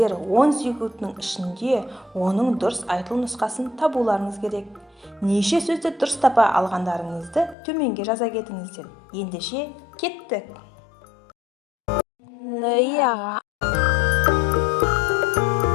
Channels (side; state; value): right; drops out; at 7.6 s